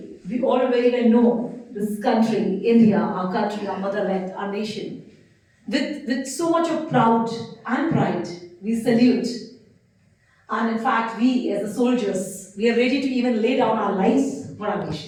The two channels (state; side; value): identical; both; correlation 1.00